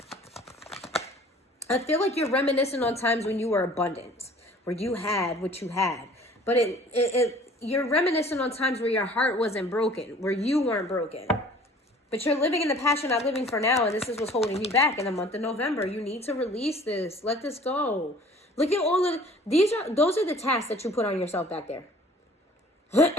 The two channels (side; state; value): both; normal; correlation 0.49